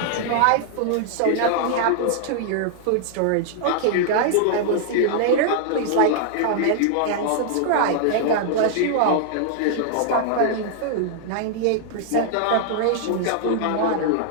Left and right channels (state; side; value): different; both; correlation -0.01